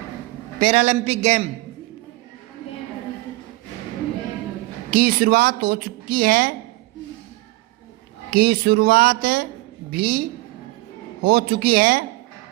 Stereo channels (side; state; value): left; quieter; 20.4 dB